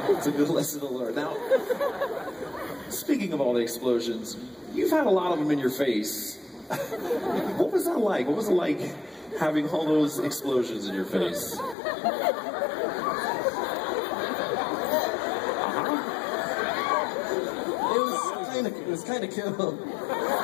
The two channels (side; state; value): right; drops out; at 11.8 s